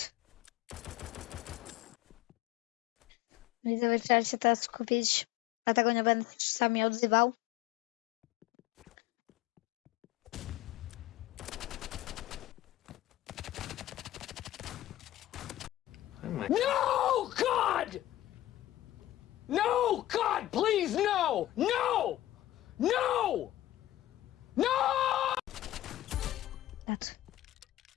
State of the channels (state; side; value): quieter; right; 14.6 dB